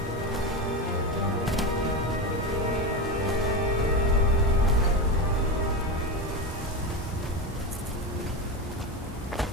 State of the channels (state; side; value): normal; both; correlation 0.17